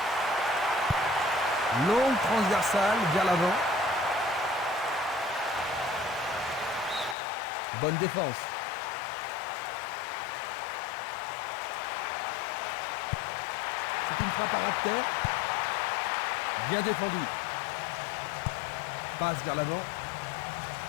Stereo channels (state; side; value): drops out; right; at 7.2 s